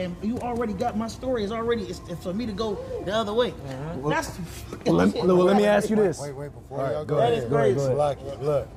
you already got my story is already, it's for me to go the other way. That's Let me ask you this. Wait, before y'all go go ahead, ahead. go ahead, go ahead. Salaki,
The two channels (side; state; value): both; identical; correlation 1.00